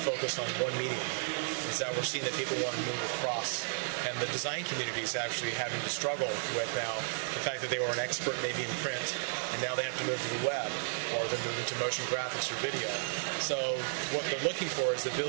focus on one medium. Is that we're seeing that people want to move across, and the design community is actually having to struggle with now the fact that they were an expert maybe in print, and now they have to move to the web, or they're moving to motion graphics or video. So what they're looking for is the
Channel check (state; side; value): silent; left; 56 dB below the other